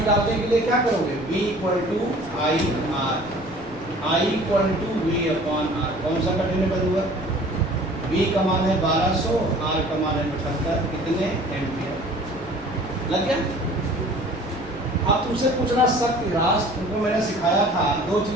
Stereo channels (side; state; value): left; noise; rumble, 18 dB below the sound